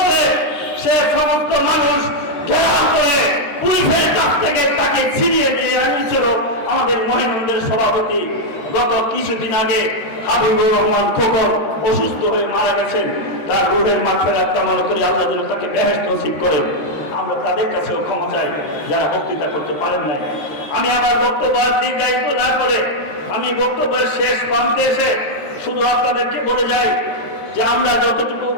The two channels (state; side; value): late; right; 13 ms